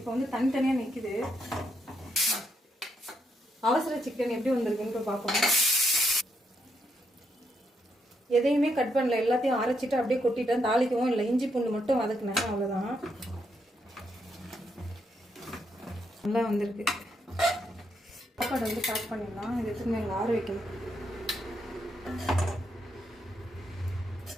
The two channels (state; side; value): normal; both; correlation 0.78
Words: வந்து தனித்தனியாக நிற்குது. அவசர சிக்கன் எப்படி வந்திருக்குன்னு பார்ப்போம். எதையுமே கட் பண்ணல, எல்லாத்தையும் அரைச்சிட்டு அப்படியே கொட்டிட்டேன். தாளிக்கவும் இல்லை. இஞ்சி பூண்டு மட்டும் வதக்குனேன், அவ்வளோதான். நல்லா வந்திருக்கு. சாப்பாடு வந்து பேக் பண்ணிடலாம். இது எடுத்துன்னு எங்கள் ஆற வைக்கணும்.